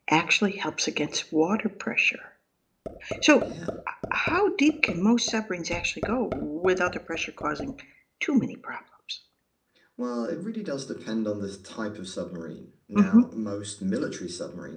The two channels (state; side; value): identical; both; correlation 1.00